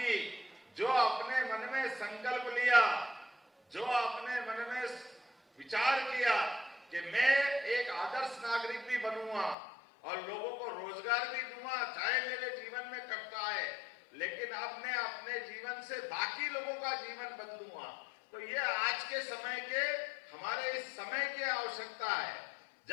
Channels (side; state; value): right; drops out; at 9.6 s